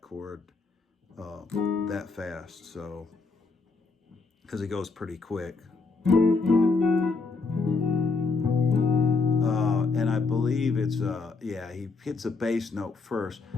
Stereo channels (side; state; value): right; quieter; 4.2 dB